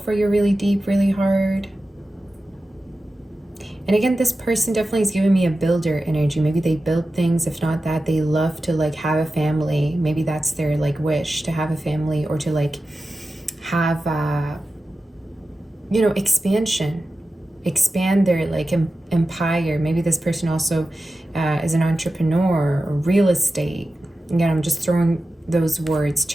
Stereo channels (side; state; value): both; normal; correlation 0.93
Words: you really deep, really hard. And again, this person definitely is giving me a builder energy. Maybe they build things. If not that, they love to like have a family. Maybe that's their like wish, to have a family, or to like have, you know, expansion, expand their like empire. Maybe this person also is an entrepreneur or real estate. Again, I'm just throwing those words,